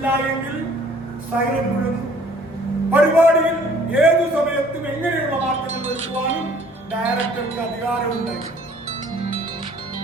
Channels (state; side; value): normal; both; correlation 0.56